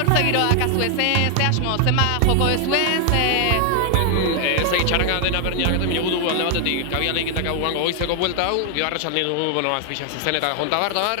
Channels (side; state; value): both; different; correlation 0.00